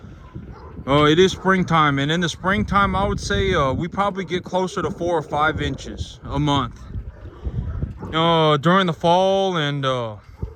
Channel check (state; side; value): identical; both; correlation 1.00